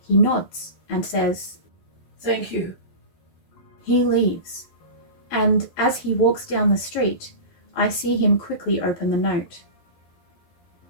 he nods and says, Thank you. He leaves, and as he walks down the street, I see him quickly open the note.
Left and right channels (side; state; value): right; late; 12 ms